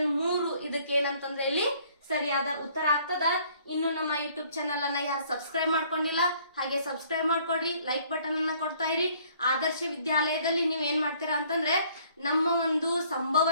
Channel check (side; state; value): both; inverted; correlation -0.60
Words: 3 ಇದಕ್ಕೆ ಏನಂತಂದ್ರೆ ಇಲ್ಲಿ ಸರಿಯಾದ ಉತ್ತರ ಆಗ್ತದ. ಇನ್ನು ನಮ್ಮ ಯೂಟ್ಯೂಬ್ ಚಾನಲ್ ಅನ್ನ ಯಾರು ಸಬ್ಸ್ಕ್ರೈಬ್ ಮಾಡ್ಕೊಂಡಿಲ್ಲ ಹಾಗೆ ಸಬ್ಸ್ಕ್ರೈಬ್ ಮಾಡ್ಕೊಡ್ರಿ, ಲೈಕ್ ಬಟನ್ ಅನ್ನ ಕೊಡ್ತಾ ಇರಿ. ಆದರ್ಶ ವಿದ್ಯಾಲಯದಲ್ಲಿ ನೀವ್ ಏನ್ ಮಾಡ್ತೀರಾ ಅಂತಂದ್ರೆ ನಮ್ಮ ಒಂದು